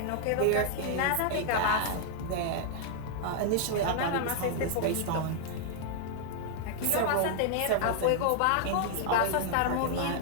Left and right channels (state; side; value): different; both; correlation -0.01